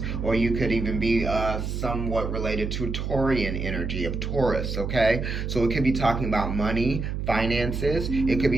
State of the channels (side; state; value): right; noise; hum, 3 dB below the sound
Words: or you could even be somewhat related to Taurian energy of Taurus, okay? So it could be talking about money, finances. It could